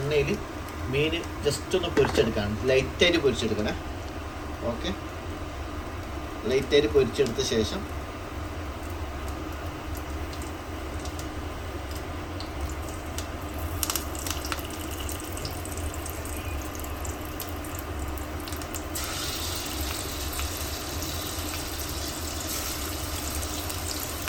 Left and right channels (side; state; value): both; identical; correlation 1.00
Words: മീൻ ജസ്റ്റ് ഒന്ന് പൊരിച്ചെടുക്കാണ്. ലൈറ്റായിട്ട് പൊരിച്ചെടുക്കണേ. ഓക്കെ, ലൈറ്റായിട്ട് പൊരിച്ചെടുത്ത ശേഷം